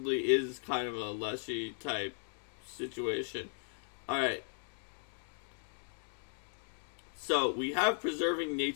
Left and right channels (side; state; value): right; silent; 53 dB below the other